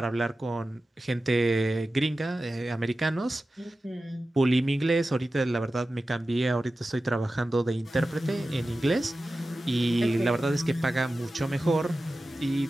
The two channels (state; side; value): normal; both; correlation 0.94